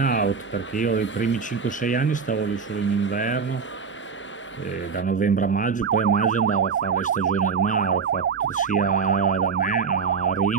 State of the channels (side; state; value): left; quieter; 5.8 dB